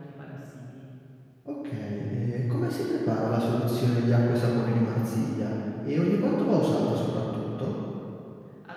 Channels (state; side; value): identical; both; correlation 1.00